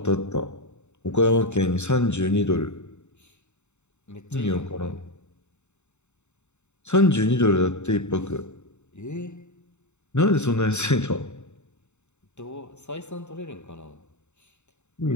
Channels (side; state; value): right; late; 0.83 ms